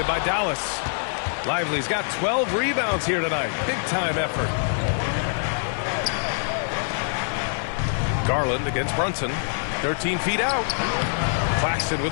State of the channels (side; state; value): right; silent; digital silence